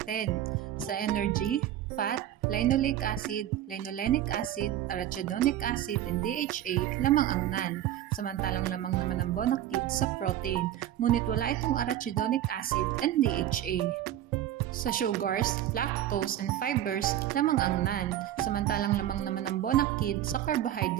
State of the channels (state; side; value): quieter; left; 12.0 dB